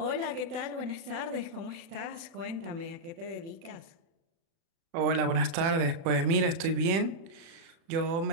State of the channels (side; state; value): left; late; 36 ms